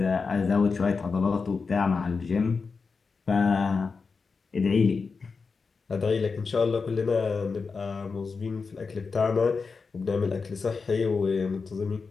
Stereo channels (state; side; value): quieter; right; 4.8 dB